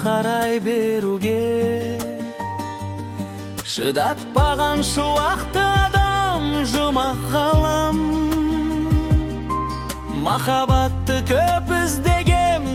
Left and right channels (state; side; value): identical; both; correlation 1.00